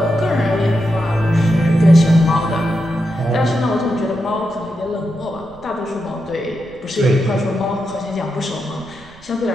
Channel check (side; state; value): right; noise; rumble, 25 dB below the sound